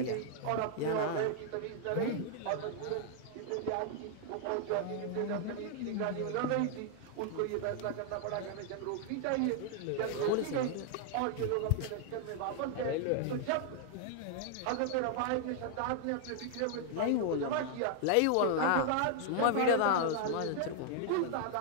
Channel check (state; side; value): different; both; correlation 0.00